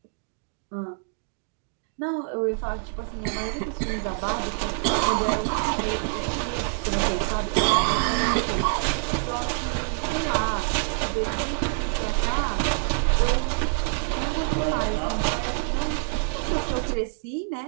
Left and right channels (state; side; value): silent; left; digital silence